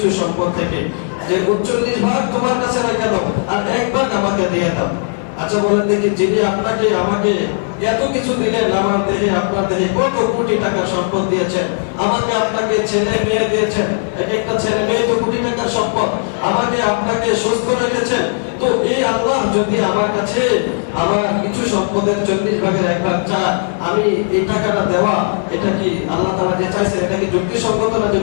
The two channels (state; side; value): silent; right; digital silence